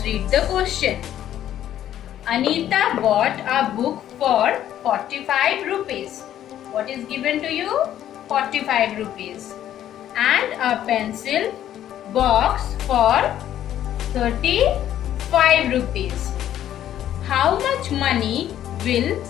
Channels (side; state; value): right; quieter; 11.4 dB